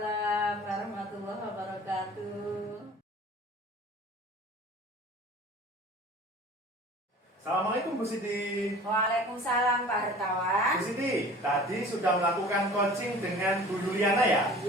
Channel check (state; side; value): normal; both; correlation 0.44